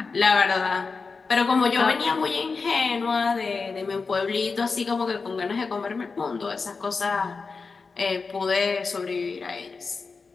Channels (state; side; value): quieter; right; 4.6 dB